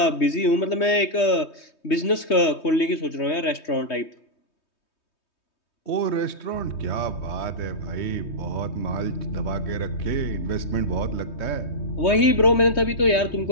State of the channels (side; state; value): right; late; 3.2 ms